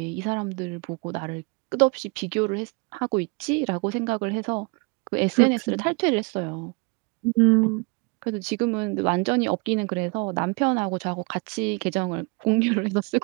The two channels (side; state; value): left; quieter; 30.5 dB